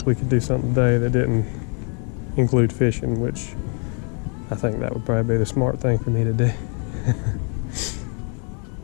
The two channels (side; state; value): right; quieter; 39.7 dB